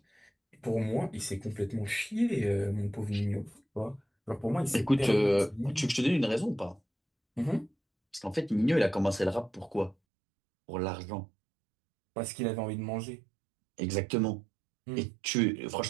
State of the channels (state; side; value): drops out; left; at 10.0 s